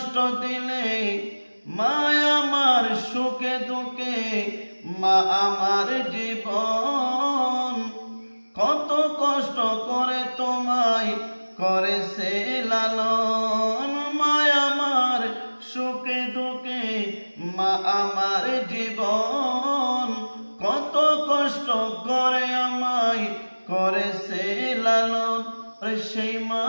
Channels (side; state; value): both; inverted; correlation -1.00